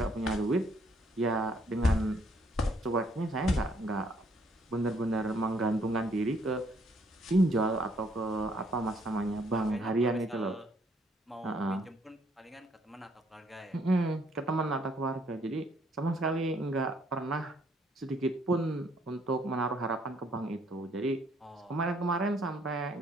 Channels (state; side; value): normal; both; correlation 0.67